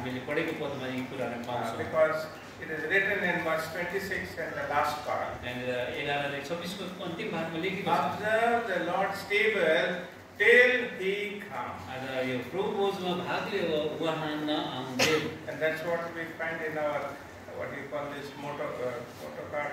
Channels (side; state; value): both; identical; correlation 1.00